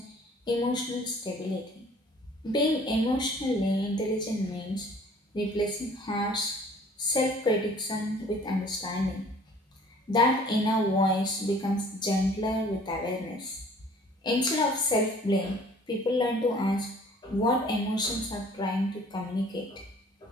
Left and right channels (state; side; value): normal; both; correlation 0.53